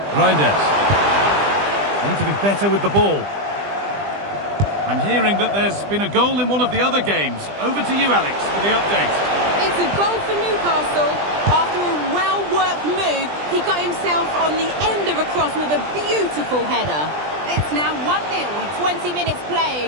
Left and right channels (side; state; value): left; late; 20 ms